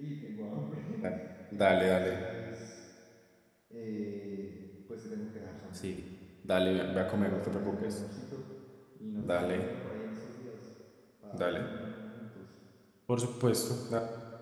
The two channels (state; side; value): identical; both; correlation 1.00